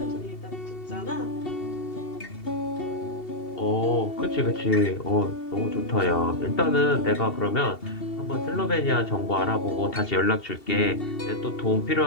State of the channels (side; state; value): right; late; 2.7 ms